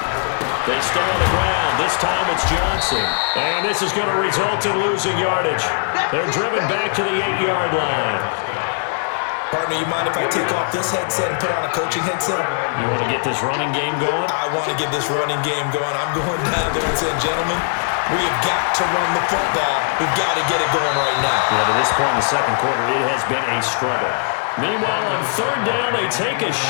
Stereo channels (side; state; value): right; silent; 66 dB below the other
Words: They stay on the ground. This time it's Johnson. And this is going to result in losing yardage. They're driven back to the 8-yard line. Partner, you mind if I take off this headset and put on a coaching headset? You want to get this running game going? I want to get this running game going. I'm going down there and saying, gentlemen, we have got to run the football. We've got to get it going right now. Yeah, to this point in the second quarter, it has been a struggle. Meanwhile, on 3rd down, they take a